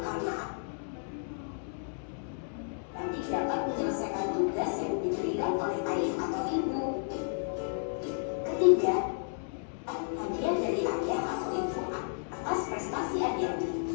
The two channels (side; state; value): right; silent; digital silence